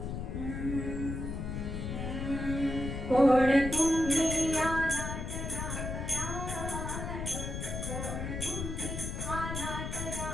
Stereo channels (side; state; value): left; noise; rumble, 4 dB below the sound